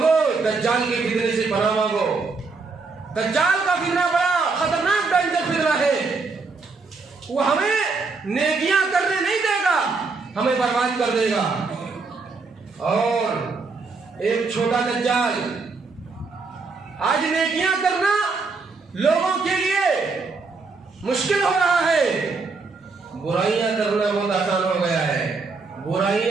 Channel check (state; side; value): quieter; left; 4.3 dB